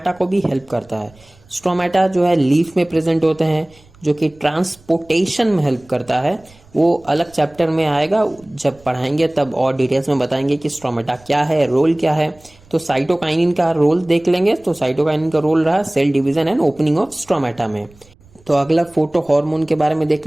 को भी हेल्प करता है। स्ट्रोमेटा जो है लीफ में प्रेजेंट होते हैं जो कि ट्रांसपोर्टेशन में हेल्प करता है। वो अलग चैप्टर में आएगा, जब पढ़ाएंगे तब और डिटेल्स में बताएंगे कि स्ट्रोमेटा क्या है, रोल क्या है। तो साइटोकाइनिन का रोल देख लेंगे। तो साइटोकाइनिन का रोल रहा cell division and opening of stomata में। तो अगला फोटो हार्मोन के बारे में देख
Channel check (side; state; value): right; noise; rumble, 28 dB below the sound